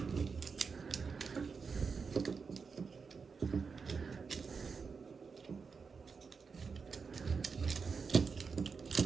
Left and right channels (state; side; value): quieter; left; 5.3 dB